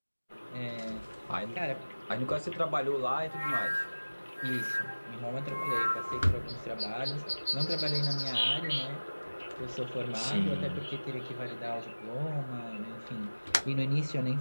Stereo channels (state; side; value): inverted; both; correlation -1.00